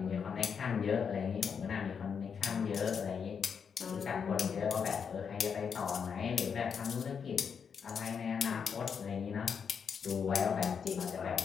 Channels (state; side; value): quieter; right; 6.6 dB